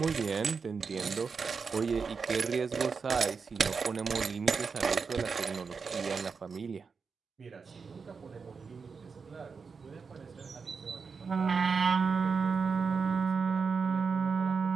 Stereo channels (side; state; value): left; quieter; 5.3 dB